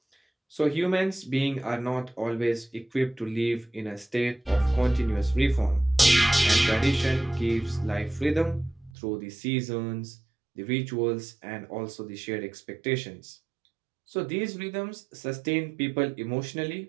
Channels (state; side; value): drops out; left; at 8.9 s